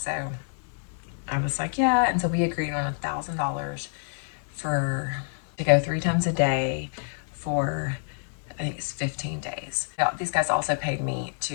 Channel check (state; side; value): silent; right; digital silence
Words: I was like, yeah. And so we agreed on $1,000 to go 3 times a day for, I think it's 15 days. Now, these guys also paid me